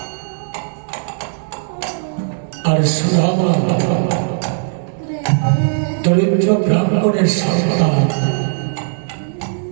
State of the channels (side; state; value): left; silent; digital silence